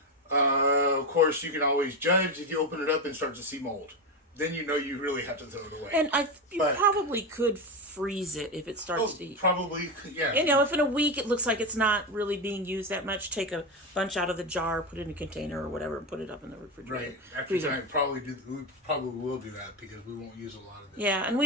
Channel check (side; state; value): both; normal; correlation 0.14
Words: Of course, you can always judge if you open it up and start to see mold. Then you know you really have to throw it away. And you probably could freeze it if it starts to eat. Probably, yeah. And, if in a week it looks like it's not really being used that much, take a bunch out of the jar, put it in a container or whatever, and put it up in the refrigerator. Right. After that, we probably will do that because we won't use a lot of this. Yeah, and we